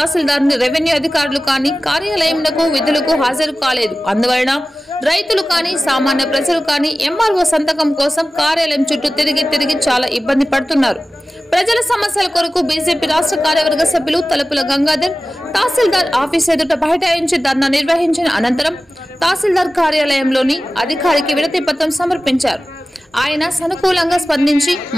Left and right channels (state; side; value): normal; both; correlation 0.96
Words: రెవెన్యూ అధికారులు కానీ కార్యాలయంలో విధులకు హాజరు కాలేదు. అందువలన రైతులు కానీ సామాన్య ప్రజలు కానీ ఎంఆర్ఓ సంతకం కోసం కార్యాలయం చుట్టూ తిరిగి చాలా ఇబ్బంది పడుతున్నారు. ప్రజల సమస్యల కొరకు బీజేపీ రాష్ట్ర కార్యవర్గ సభ్యులు తలుపుల గంగాధర్ తహసీల్దార్ ఆఫీస్ ఎదుట బైఠాయించి ధర్నా నిర్వహించిన అనంతరం తహసీల్దార్ కార్యాలయంలోని అధికారికి వినతి పత్రం సమర్పించారు. ఆయన సానుకూలంగా స్పందించి